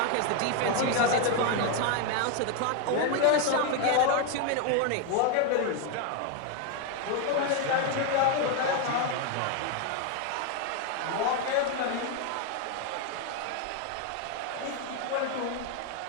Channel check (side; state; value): both; different; correlation 0.01